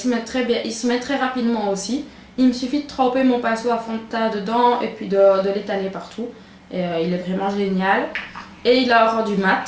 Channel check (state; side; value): identical; both; correlation 1.00